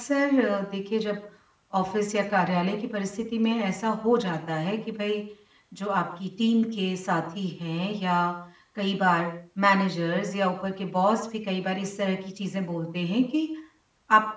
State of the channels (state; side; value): identical; both; correlation 1.00